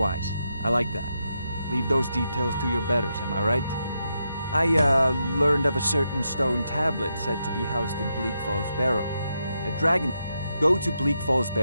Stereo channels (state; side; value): inverted; both; correlation -0.83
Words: I like that. Leave those details to your betters, am I right? I, learned of a certain stone tablet said to be housed in Bleak Falls Barrow. A dragon... Go to Bleak Falls